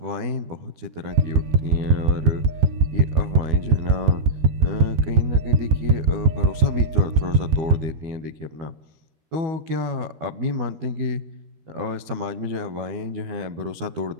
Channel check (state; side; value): late; left; 12 ms